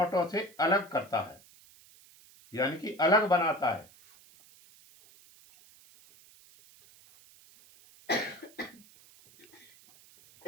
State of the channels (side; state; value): right; noise; hiss, 25 dB below the sound